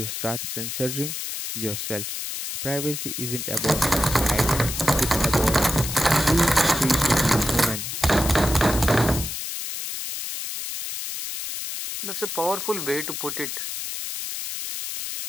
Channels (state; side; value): noise; left; hiss, 5 dB below the sound